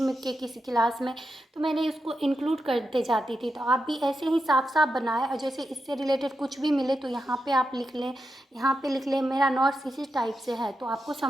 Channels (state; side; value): normal; both; correlation 0.88